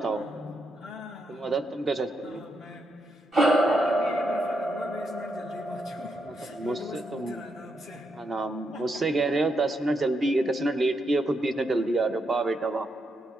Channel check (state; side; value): normal; both; correlation 0.81